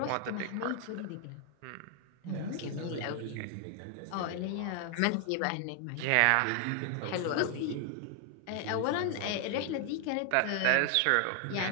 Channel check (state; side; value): different; both; correlation 0.00